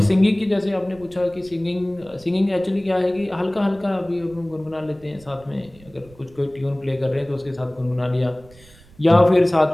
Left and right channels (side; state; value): right; noise; rumble, 25 dB below the sound